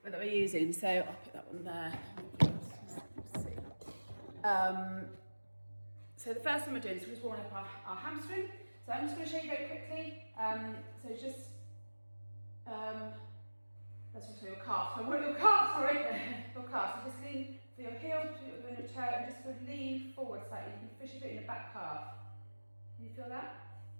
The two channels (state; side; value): inverted; both; correlation -1.00